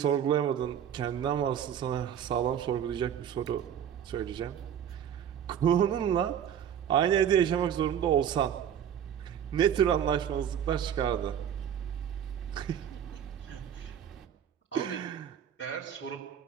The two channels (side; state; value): left; quieter; 9.2 dB